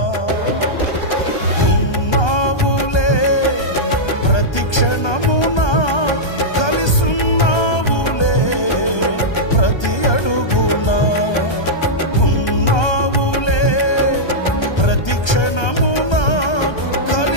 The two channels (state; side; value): late; right; 1.3 ms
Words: ఉన్నావులే ప్రతి క్షణమునా కలిసున్నావులే ప్రతి అడుగునా, ఉన్నావులే ప్రతి క్షణమునా